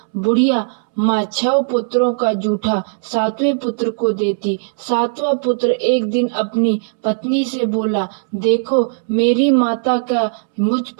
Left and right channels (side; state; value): left; silent; 66 dB below the other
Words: बुढ़िया माँ 6 पुत्रों का जूठा 7वें पुत्र को देती। 7वां पुत्र एक दिन अपनी पत्नी से बोला, देखो मेरी माता का मुझ